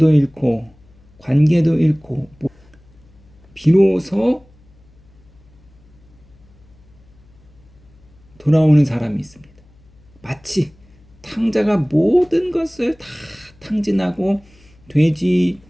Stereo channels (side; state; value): left; noise; hum, 28 dB below the sound